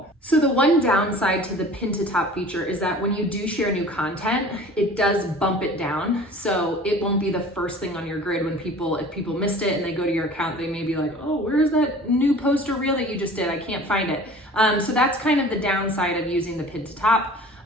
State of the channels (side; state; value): both; normal; correlation 0.44